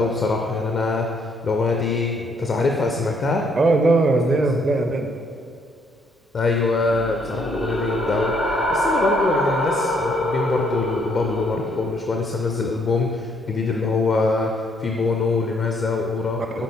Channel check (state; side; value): normal; both; correlation 0.69